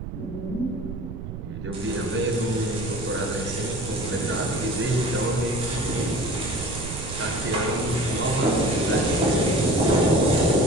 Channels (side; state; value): right; noise; rumble, 9 dB below the sound